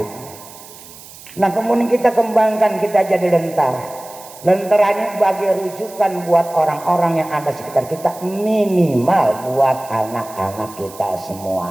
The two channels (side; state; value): right; noise; hiss, 18 dB below the sound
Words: Nah kemudian kita kembangkan, kita jadi lentera. Lenteranya bagi rujukan buat orang-orang yang ada sekitar kita, minimal buat anak-anak kita